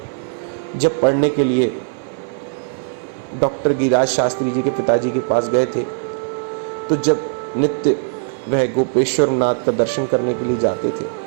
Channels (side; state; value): left; silent; 63 dB below the other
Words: जब पढ़ने के लिए डॉक्टर गिरिराज शास्त्री जी के पिताजी के पास गए थे, तो जब नित्य वह गोपेश्वर नाथ का दर्शन करने के लिए जाते थे,